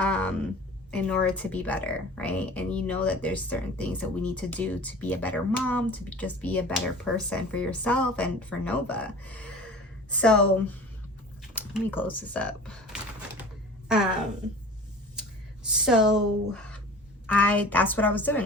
in order to be better, right? And you know that there's certain things that we need to do to be a better mom, to just be a better person for yourself and for Nova. So let me close this up. So that's what I was doing.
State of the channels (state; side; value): normal; both; correlation 0.41